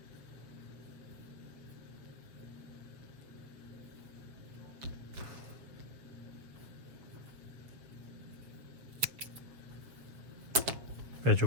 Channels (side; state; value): left; late; 7.3 ms